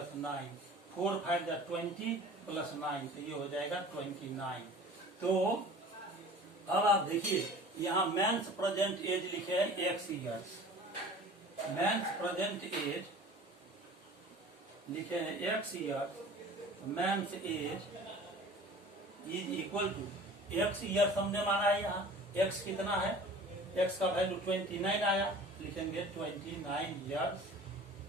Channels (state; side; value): normal; both; correlation 0.43